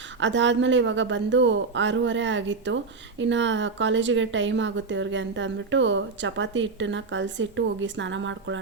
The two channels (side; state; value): left; quieter; 4.3 dB